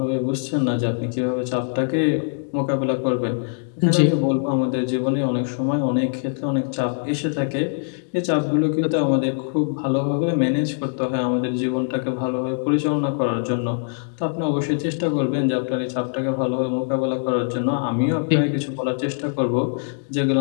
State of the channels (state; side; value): silent; right; digital silence